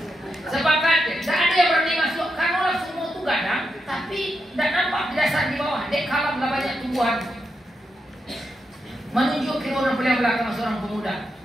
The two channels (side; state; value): both; normal; correlation 0.84